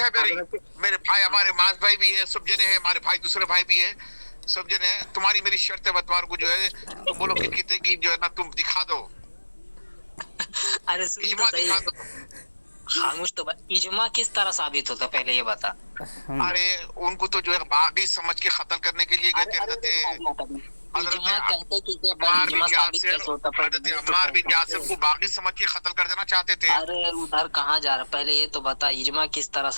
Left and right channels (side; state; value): both; inverted; correlation -1.00